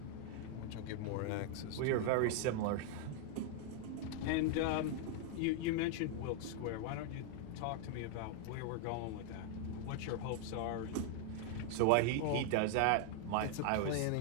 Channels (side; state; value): both; different; correlation 0.00